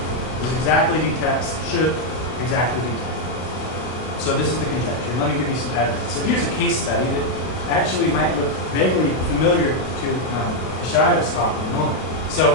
This exactly detects, should exactly detect. So this is the conjecture. Let me give you some evidence. So here's a case study that actually might look vaguely familiar to Shaida's talk in a moment.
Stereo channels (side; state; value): right; late; 32 ms